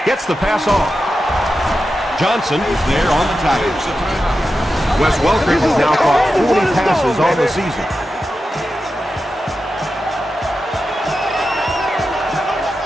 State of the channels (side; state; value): both; normal; correlation 0.91